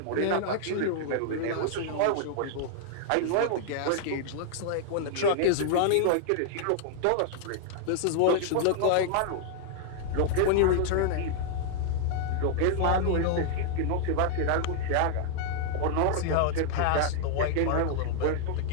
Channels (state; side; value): different; both; correlation -0.01